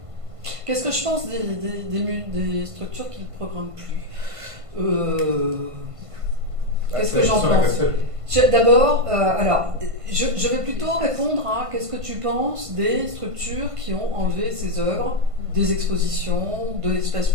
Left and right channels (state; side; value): late; left; 1.5 ms